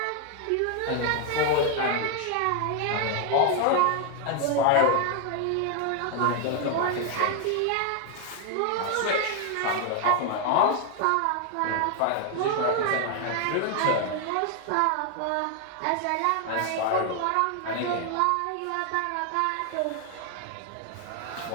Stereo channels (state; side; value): different; both; correlation 0.00